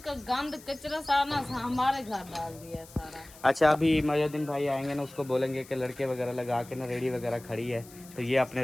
का गंद कचरा सारा हमारे घर डाल दिया सारा। अच्छा, अभी मुहम्मदुद्दीन भाई आएंगे ना, उसको बोलेंगे कि लड़के वगैरह लगा के ना रेडी वगैरह खड़ी है, तो ये अपने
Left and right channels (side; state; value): left; noise; hiss, 21 dB below the sound